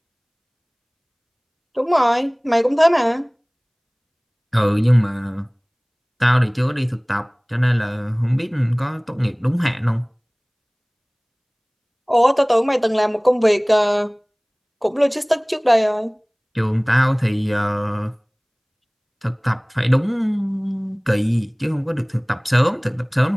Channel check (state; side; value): identical; both; correlation 1.00